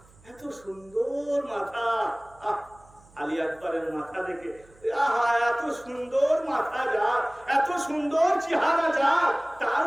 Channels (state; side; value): noise; right; hum, 27 dB below the sound